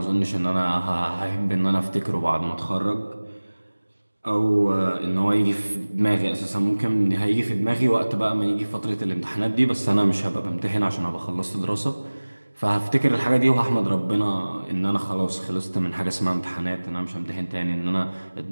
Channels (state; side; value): inverted; both; correlation -1.00